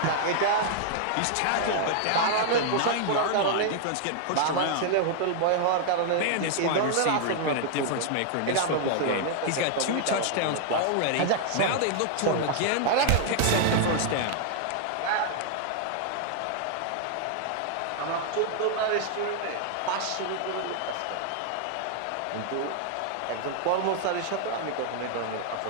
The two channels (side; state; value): both; different; correlation -0.01